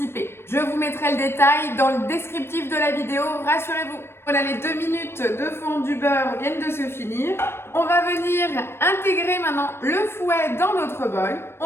Je vous mettrai le détail dans le descriptif de la vidéo, rassurez-vous. Voilà, les 2 minutes de fond du beurre viennent de se finir. On va venir intégrer maintenant le fouet dans notre bol.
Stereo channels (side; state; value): right; late; 0.12 ms